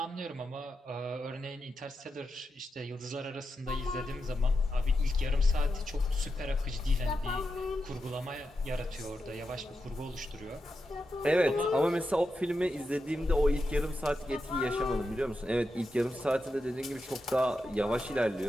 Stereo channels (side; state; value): both; normal; correlation 0.88